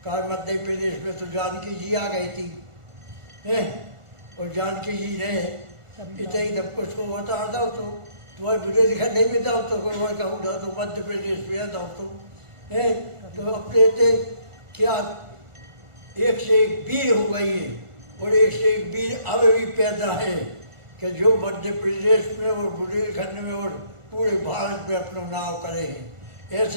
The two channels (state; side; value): late; left; 1.4 ms